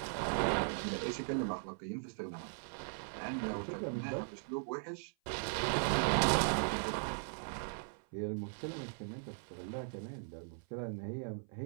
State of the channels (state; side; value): silent; left; 52 dB below the other